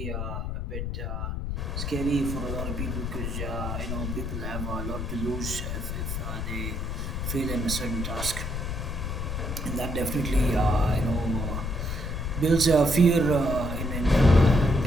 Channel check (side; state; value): left; noise; rumble, 3 dB below the sound